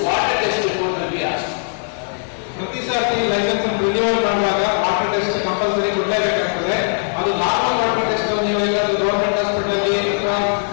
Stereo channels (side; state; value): right; silent; digital silence